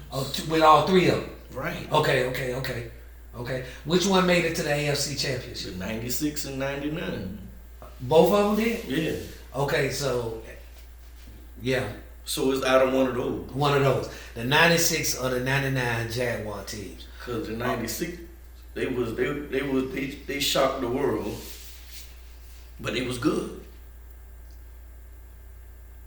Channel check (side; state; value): both; identical; correlation 1.00